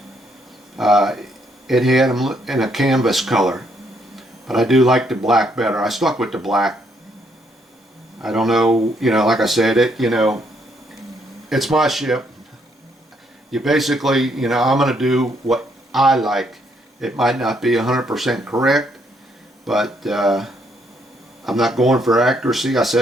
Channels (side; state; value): both; normal; correlation 0.72